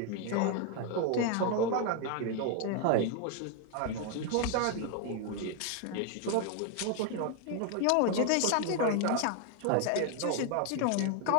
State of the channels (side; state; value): both; different; correlation 0.01